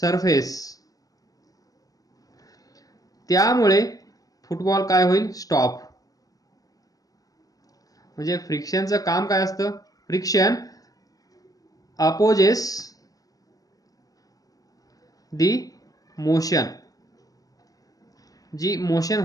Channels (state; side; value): late; right; 0.18 ms